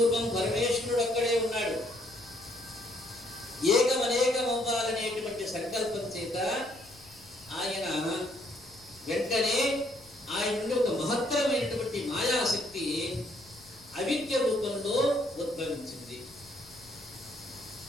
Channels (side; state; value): left; noise; rumble, 25 dB below the sound